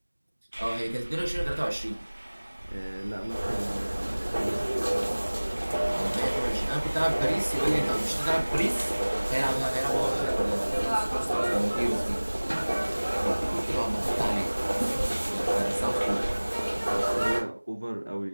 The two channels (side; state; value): both; inverted; correlation -1.00